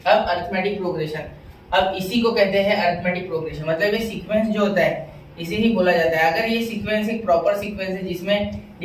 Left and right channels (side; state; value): both; identical; correlation 1.00